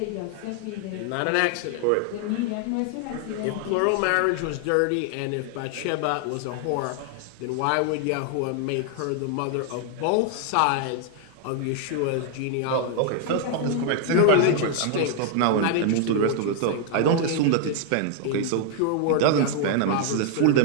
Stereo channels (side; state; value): both; different; correlation 0.00